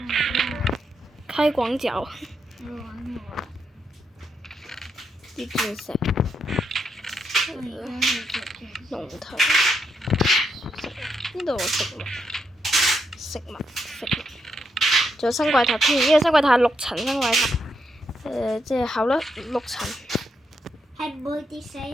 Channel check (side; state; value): both; normal; correlation 0.80